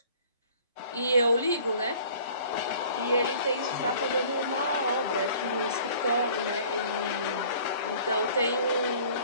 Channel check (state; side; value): inverted; both; correlation -0.51